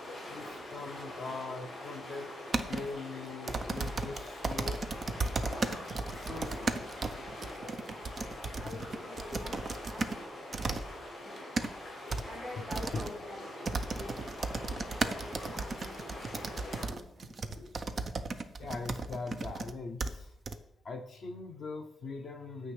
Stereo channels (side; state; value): both; normal; correlation 0.84